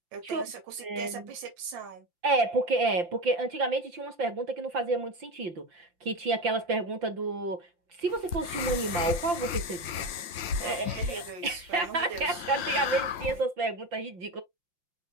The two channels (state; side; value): late; left; 5.8 ms